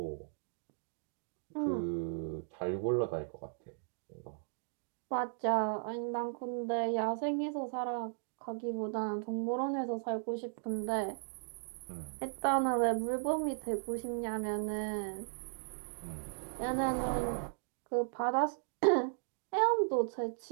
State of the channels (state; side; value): silent; left; digital silence